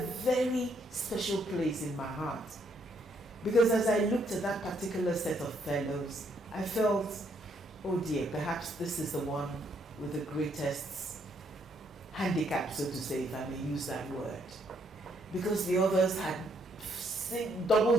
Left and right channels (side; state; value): both; normal; correlation 0.71